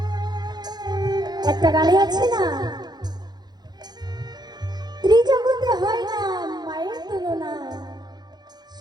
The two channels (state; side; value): late; left; 0.20 ms